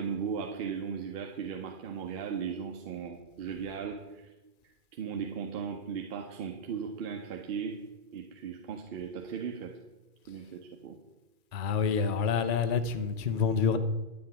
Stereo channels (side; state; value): left; late; 2.4 ms